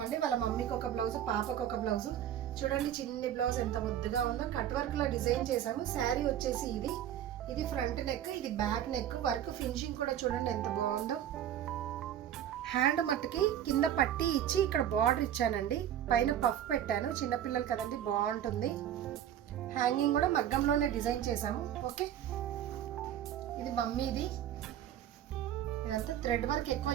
వాళ్ళ మమ్మీకి ఒక బ్లౌజ్, పాపకు ఒక బ్లౌజ్. చూడండి చిన్ని బ్లౌజ్ ఎంత ముద్దుగా ఉందో. కట్ వర్క్ లో డిజైన్ చేసాము. శారీ వచ్చేసి ఇది ఫ్రంట్ నెక్, ఇది బ్యాక్ నెక్. వర్క్ ఫినిషింగ్ కూడా చూడండి ఎంత బాగుందో. హ్యాండ్ మట్టుకి కింద పట్టి ఇచ్చి ఇక్కడ బార్డర్ ఇచ్చానండి. పైన పఫ్ పెట్టాను, చిన్నపిల్లలు కదండి బాగుంటుంది. హ్యాంగింగ్ కూడా మగ్గంలోనే డిజైన్ చేసాము. ఓకే, ఇది మమ్మీది. ఇదంతా థ్రెడ్ వర్క్ ఎక్కువ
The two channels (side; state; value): left; quieter; 10.7 dB